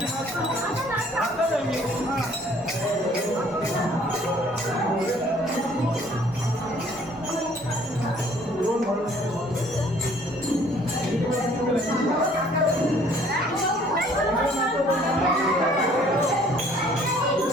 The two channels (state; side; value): normal; both; correlation 0.58